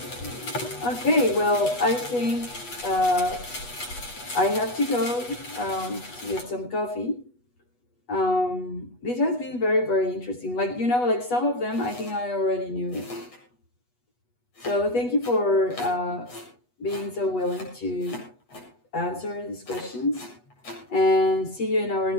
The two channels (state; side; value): late; right; 8.2 ms